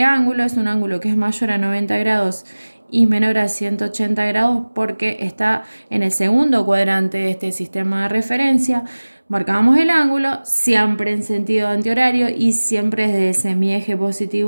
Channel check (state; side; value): inverted; both; correlation -1.00